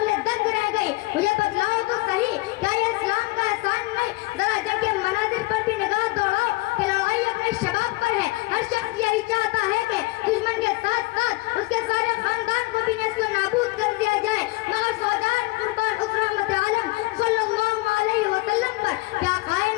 دنگ رہ گئی۔ مجھے بتلاؤ تو صحیح، کیا یہ اسلام کا احسان نہیں؟ ذرا جنگ کے مناظر پر بھی نگاہ دوڑاؤ کہ لڑائی اپنے شباب پر ہے، ہر شخص یہی چاہتا ہے کہ دشمن کے ساتھ ساتھ اس کے سارے خاندان کو بھی نسل و نابود کر دیا جائے، مگر فوجان قربان اس رحمت عالم صلی اللہ علیہ وسلم پر کیا قائے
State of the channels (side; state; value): right; quieter; 22.1 dB